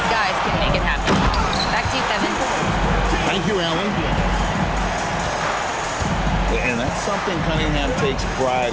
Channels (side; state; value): both; identical; correlation 1.00